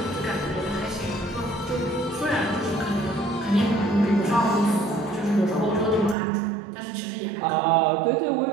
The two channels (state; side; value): drops out; left; at 6.2 s